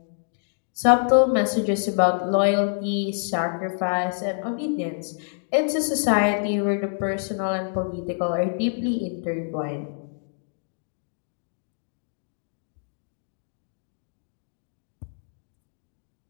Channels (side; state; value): right; silent; digital silence